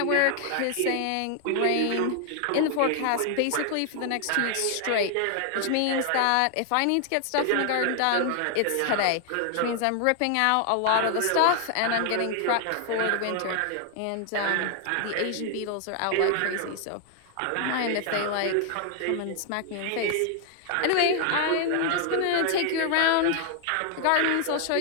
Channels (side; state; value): both; different; correlation 0.00